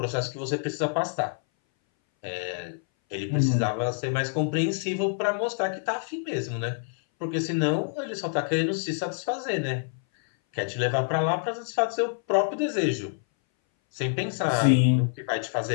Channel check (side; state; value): right; silent; 59 dB below the other